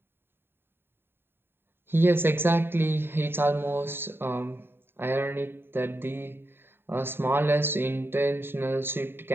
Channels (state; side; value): late; left; 0.11 ms